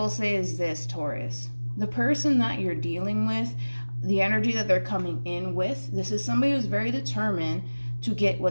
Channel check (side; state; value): both; inverted; correlation -1.00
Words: say is this, Taurus, the person that you're dealing with, the energy that they're coming in with, this is somebody who's very determined to get